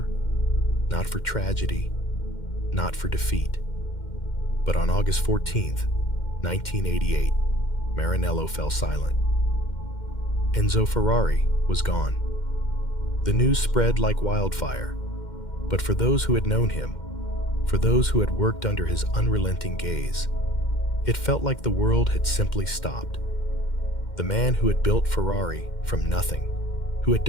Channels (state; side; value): late; right; 2.1 ms